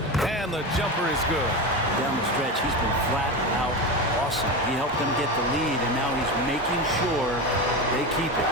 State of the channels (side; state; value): both; normal; correlation 0.21